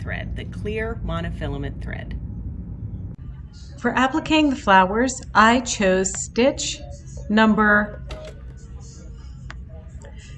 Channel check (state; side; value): identical; both; correlation 1.00